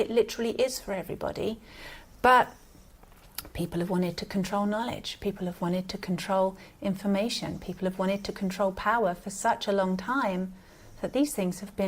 literally is for everybody. But people have wanted to control knowledge. People have wanted to control information. People have wanted to control power for such a long time that these things have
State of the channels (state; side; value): identical; both; correlation 1.00